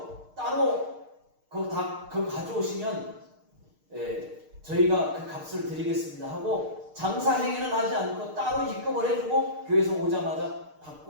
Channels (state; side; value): late; left; 6.5 ms